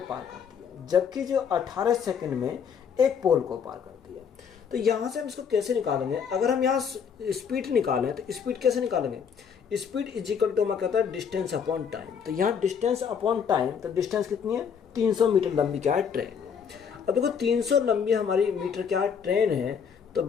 पार करती है, जबकि जो 18 सेकंड में एक पोल को पार करती है। तो यहाँ से हम इसको कैसे निकालेंगे? अगर हम यहाँ स्पीड निकालें तो स्पीड कैसे निकालेंगे? स्पीड इज इक्वल टू मैं कहता है डिस्टेंस अपॉन टाइम। तो यहाँ डिस्टेंस अपॉन टाइम, तो डिस्टेंस कितनी है? 300 मीटर लंबी क्या है? ट्रेन है। अब देखो 300 लंबी हमारी मीटर क्या है? ट्रेन है। तो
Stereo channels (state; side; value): quieter; right; 7.0 dB